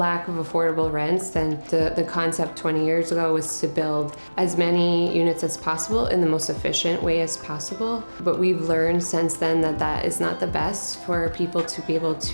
of affordable rents, then the concept 20 years ago was to build as many units as possible in the most efficient way as possible. But we've learned since then that that is not the best for people to be able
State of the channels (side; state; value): both; inverted; correlation -1.00